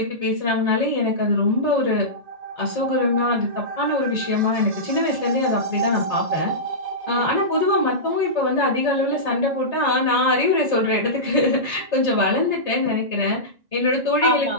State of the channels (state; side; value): late; left; 1.9 ms